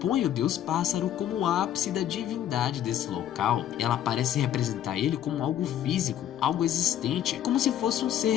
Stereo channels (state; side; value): quieter; right; 10.9 dB